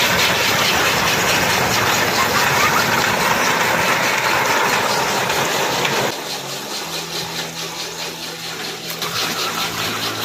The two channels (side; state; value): both; identical; correlation 1.00